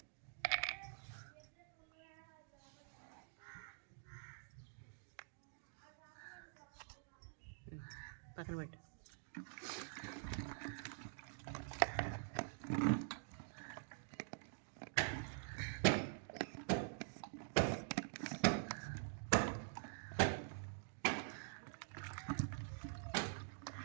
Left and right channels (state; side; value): silent; left; digital silence